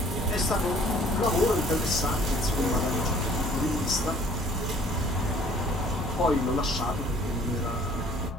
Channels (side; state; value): both; normal; correlation 0.55